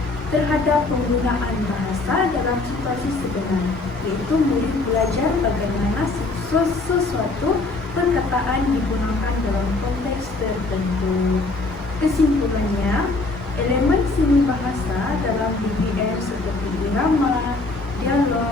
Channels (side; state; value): right; quieter; 3.3 dB